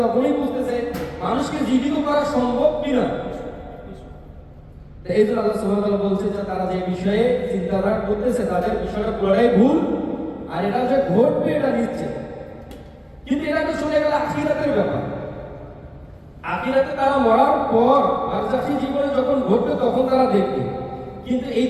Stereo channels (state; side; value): identical; both; correlation 1.00